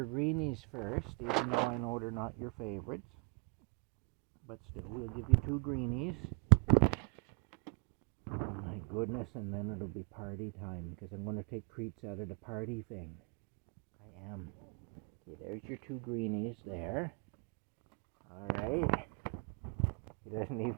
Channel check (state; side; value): quieter; left; 36.8 dB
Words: greenies first, even though I know they're not your favorites. But still, we'll give you 2 greenies. Oh my goodness, and then it'll be party time, because I'm going to take treats out of the party thing. I am. Okay, there's your 2 greenies there. Alright. He doesn't